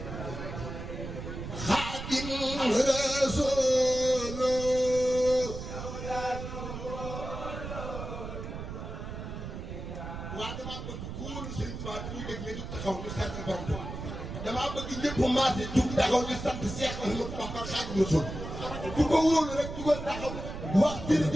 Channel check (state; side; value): noise; right; rumble, 8 dB below the sound